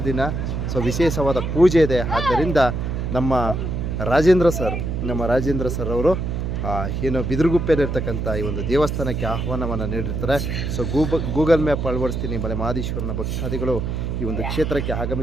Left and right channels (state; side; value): noise; right; hum, 2 dB below the sound